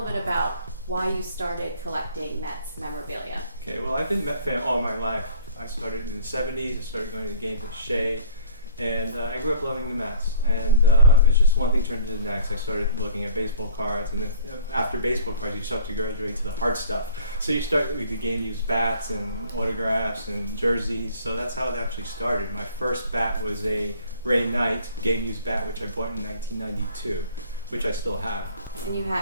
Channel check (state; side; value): inverted; both; correlation -0.52